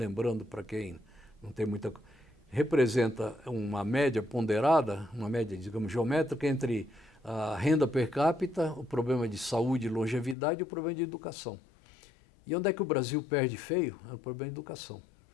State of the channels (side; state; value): right; drops out; at 10.4 s